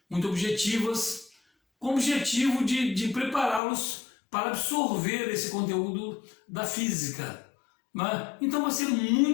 muito objetivas, com o objetivo de prepará-los para absorver esse conteúdo da física. Então vai ser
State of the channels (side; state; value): right; drops out; at 3.6 s